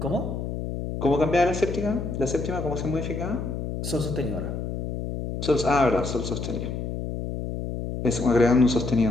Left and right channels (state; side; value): noise; left; hum, 5 dB below the sound